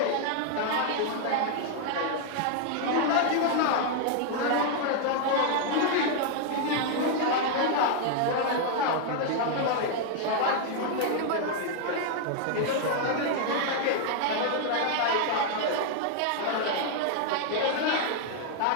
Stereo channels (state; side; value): different; both; correlation 0.00